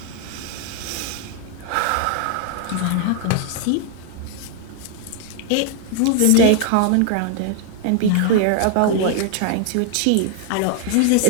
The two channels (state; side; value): different; both; correlation 0.01